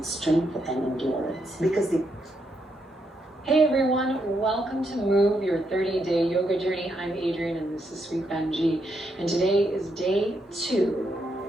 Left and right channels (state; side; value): normal; both; correlation 0.79